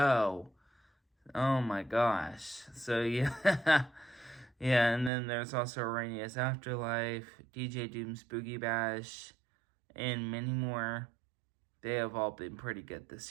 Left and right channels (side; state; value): left; drops out; at 5.1 s